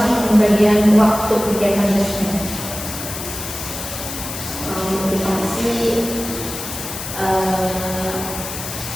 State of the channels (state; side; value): noise; left; hiss, 8 dB below the sound